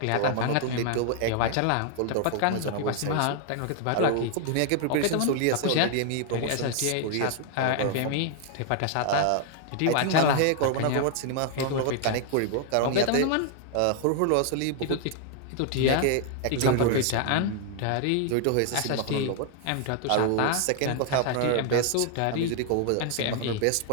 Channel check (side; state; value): both; different; correlation 0.00